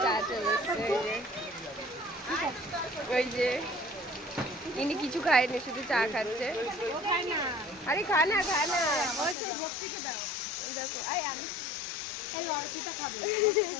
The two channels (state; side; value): drops out; right; at 9.3 s